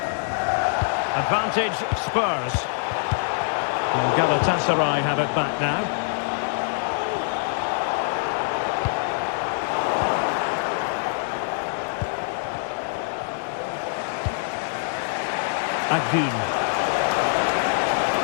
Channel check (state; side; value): silent; right; 62 dB below the other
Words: Advantage Spurs. And Galatasaray have it back now. Akun.